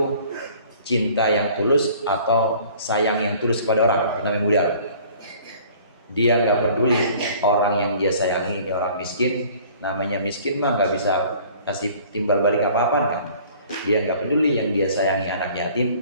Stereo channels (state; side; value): inverted; both; correlation -0.52